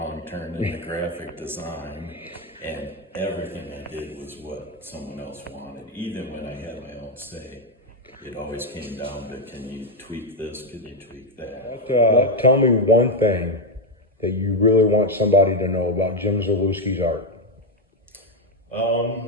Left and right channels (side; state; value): both; normal; correlation 0.04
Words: turn into graphic design, and everything I did was what someone else wanted. Even when I had my own say, it always came down to, can you tweak this, can you tweak that? Tell me one thing that you really want somebody to know about Jim Zalewski's art.